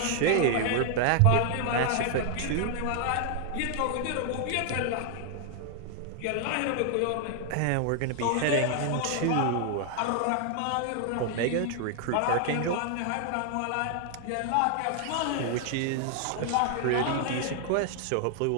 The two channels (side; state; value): both; different; correlation 0.00